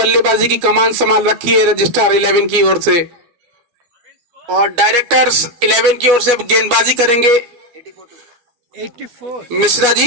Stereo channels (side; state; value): left; late; 12 ms